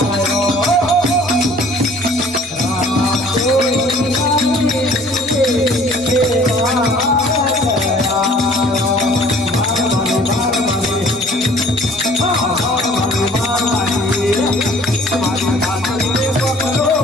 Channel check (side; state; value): both; normal; correlation 0.53